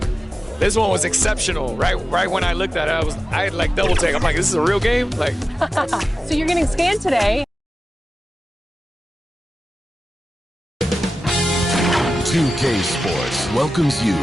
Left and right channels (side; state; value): both; normal; correlation 0.95